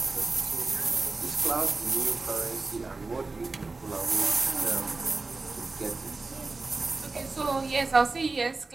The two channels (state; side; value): quieter; left; 3.7 dB